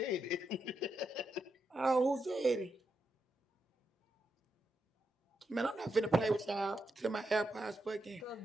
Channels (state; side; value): normal; both; correlation 0.84